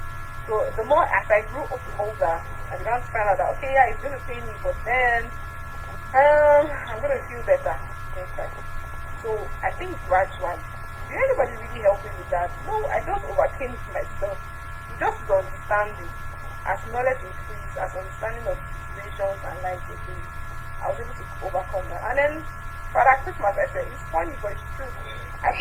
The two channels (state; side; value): identical; both; correlation 1.00